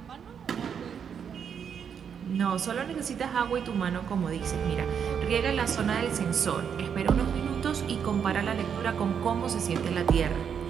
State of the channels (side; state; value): left; quieter; 7.5 dB